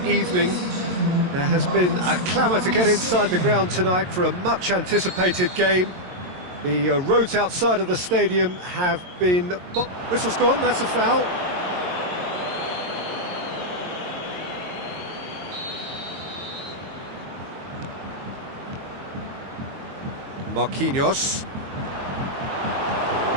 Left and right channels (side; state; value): left; late; 22 ms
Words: evening. There has been a clamour to get inside the ground tonight for a much anticipated game. The roads outside of the stadium have been... Whistle's gone, that's a foul. Marquinhos.